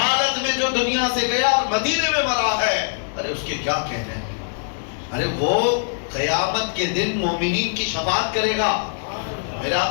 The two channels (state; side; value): silent; right; digital silence